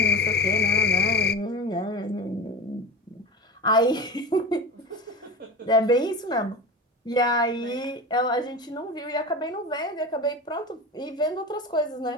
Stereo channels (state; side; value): normal; both; correlation 0.28